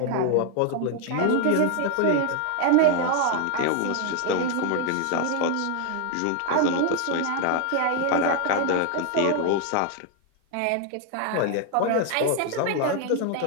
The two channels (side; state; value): both; different; correlation 0.00